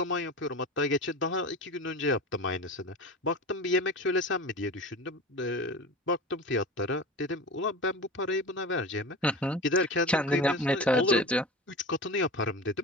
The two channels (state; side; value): normal; both; correlation 0.31